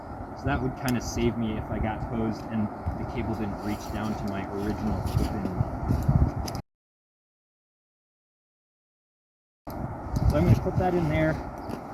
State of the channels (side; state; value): both; identical; correlation 1.00